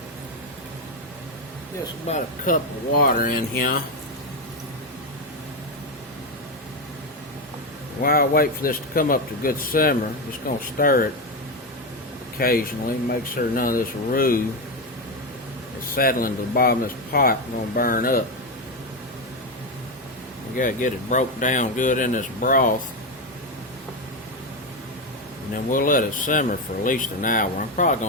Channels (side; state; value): both; normal; correlation 0.11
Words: Just about a cup of water in here. While I wait for this to come up to a good simmer, I'm just going to stir it occasionally. Make sure none of this roux is settling to the bottom of this pot and going to burn up. We got to get it broke down good in this broth. And then we'll let it simmer for at least an hour. I'm probably